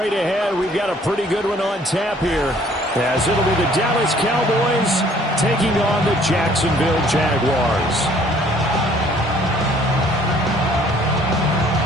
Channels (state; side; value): normal; both; correlation 0.58